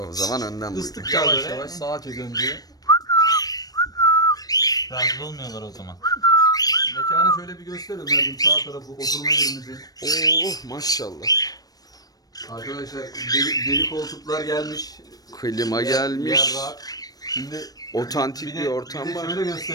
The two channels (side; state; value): right; late; 0.18 ms